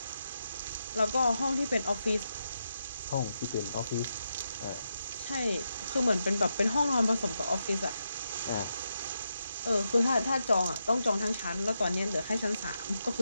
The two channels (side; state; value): both; inverted; correlation -0.85